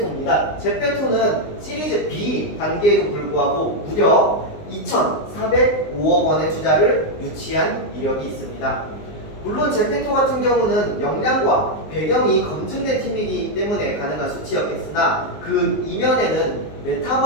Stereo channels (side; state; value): right; late; 19 ms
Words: 제페토는 시리즈 B 단계에도 불구하고 무려 2,405억 원의 투자를 유치한 이력이 있습니다. 물론 제페토 같은 경우는 역량과 배경이 검증된 팀이기 때문에 가능한 수치였겠으나 그 이면에는